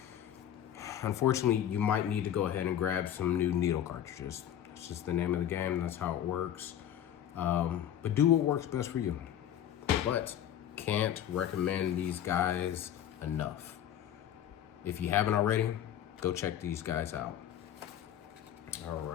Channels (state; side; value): quieter; right; 10.5 dB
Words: unfortunately you might need to go ahead and grab some new needle cartridges. It's just the name of the game. That's how it works. But do what works best for you. But can't recommend these guys enough. If you haven't already, go check these guys out. All